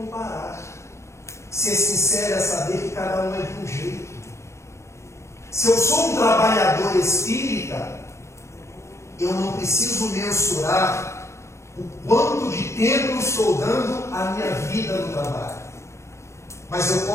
Ser sincero é saber que cada um é de um jeito. Se eu sou um trabalhador espírita, eu não preciso mensurar o quanto de tempo eu estou dando à minha vida no trabalho. Mas eu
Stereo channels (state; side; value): late; right; 0.14 ms